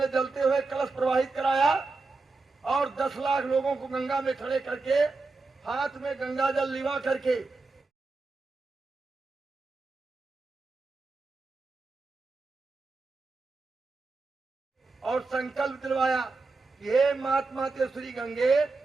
जलते हुए कलश प्रवाहित कराया और 10 लाख लोगों को गंगा में खड़े करके हाथ में गंगा जल लिवा करके और संकल्प दिलवाया कि हे महात्मा ते श्री गंगे,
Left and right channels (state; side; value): quieter; left; 3.8 dB